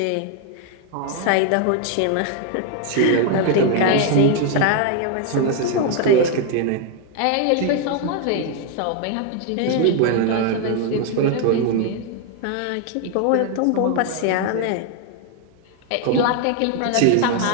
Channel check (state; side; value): different; both; correlation 0.00